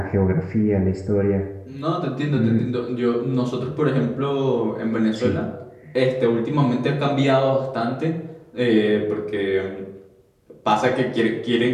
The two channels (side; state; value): both; identical; correlation 1.00